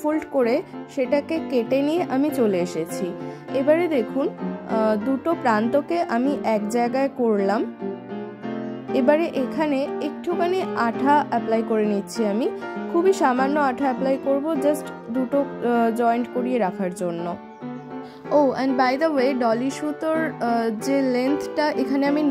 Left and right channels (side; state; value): both; identical; correlation 1.00